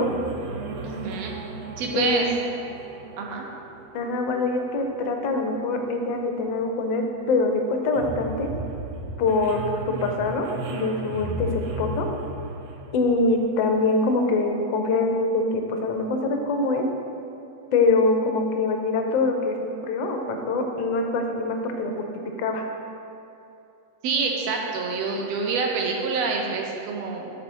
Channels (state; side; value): late; left; 8.1 ms